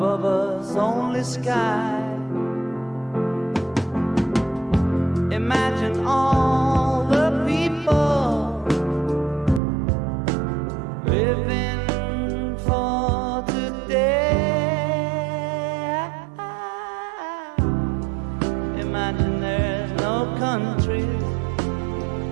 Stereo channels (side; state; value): left; drops out; at 9.6 s